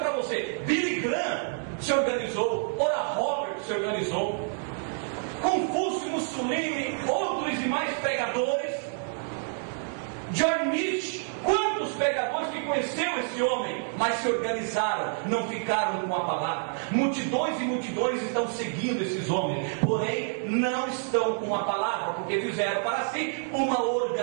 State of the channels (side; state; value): left; silent; 59 dB below the other